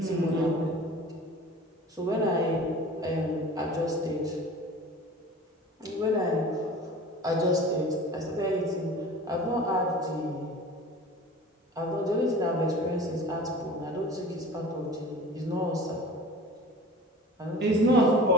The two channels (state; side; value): normal; both; correlation 0.41